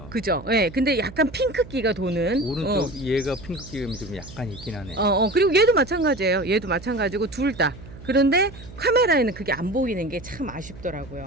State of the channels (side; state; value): right; noise; hum, 17 dB below the sound